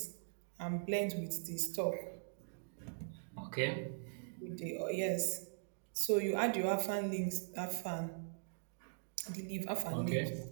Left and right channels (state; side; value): silent; left; digital silence